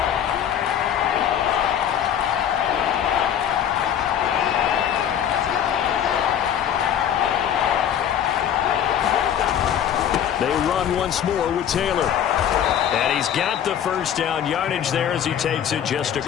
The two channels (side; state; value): right; quieter; 9.5 dB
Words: Once more with Taylor. And he's got the first down yardage there as he takes it just